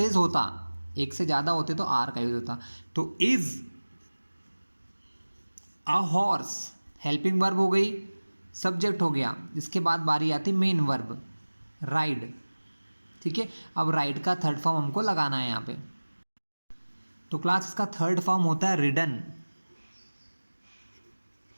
होता, एक से ज़्यादा होते तो आर का यूज होता। तो is a horse helping verb हो गई, सब्जेक्ट हो गया। इसके बाद बारी आती मेन वर्ब राइड। ठीक है, अब राइड का थर्ड फॉर्म हमको लगाना है यहाँ पे। तो क्लास इसका थर्ड फॉर्म होता है रिडन,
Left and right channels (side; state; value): both; inverted; correlation -1.00